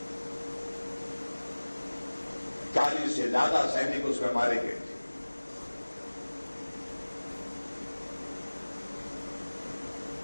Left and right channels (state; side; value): inverted; both; correlation -1.00